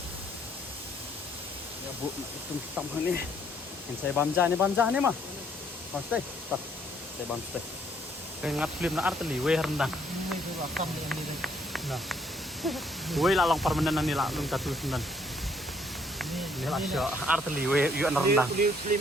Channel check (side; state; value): both; normal; correlation 0.66